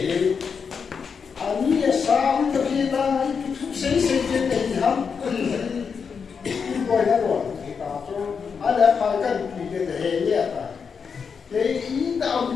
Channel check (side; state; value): right; quieter; 6.0 dB